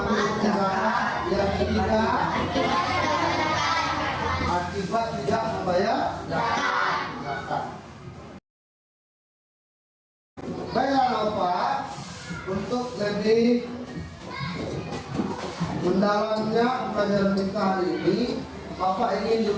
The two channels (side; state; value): both; identical; correlation 1.00